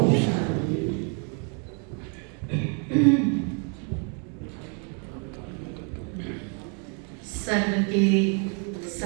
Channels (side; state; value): left; quieter; 39.4 dB